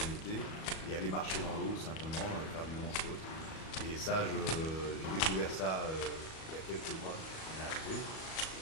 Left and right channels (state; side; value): late; right; 37 ms